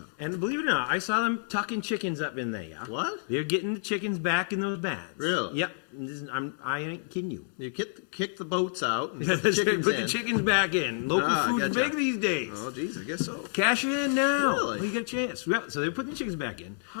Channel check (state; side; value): silent; right; digital silence